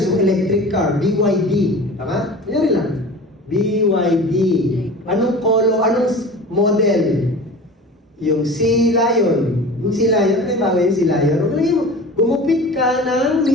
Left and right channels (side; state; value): both; normal; correlation 0.37